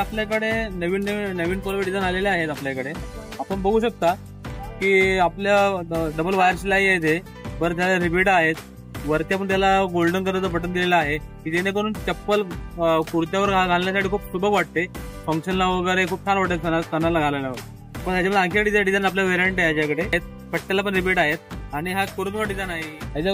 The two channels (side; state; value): both; identical; correlation 1.00